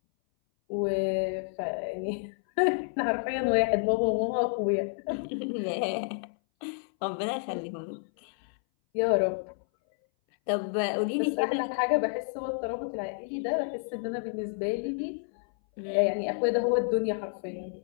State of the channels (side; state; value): right; silent; 58 dB below the other